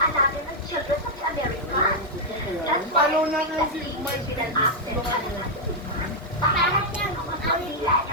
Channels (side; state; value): both; normal; correlation -0.03